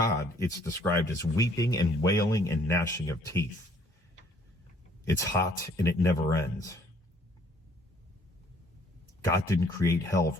it's described as weeping and wailing and gnashing of teeth. It's hot and it never ends. God didn't create hell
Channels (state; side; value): normal; both; correlation 0.61